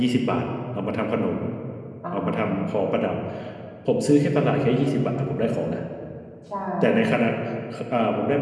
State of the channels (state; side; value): identical; both; correlation 1.00